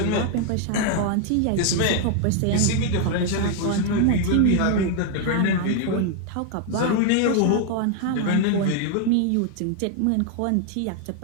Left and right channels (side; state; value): both; different; correlation 0.00